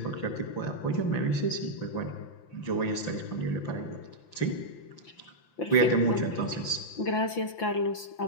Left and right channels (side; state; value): right; late; 5.9 ms